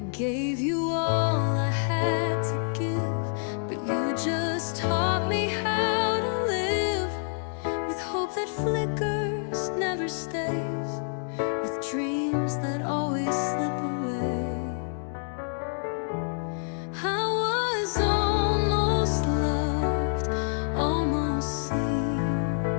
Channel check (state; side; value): silent; right; digital silence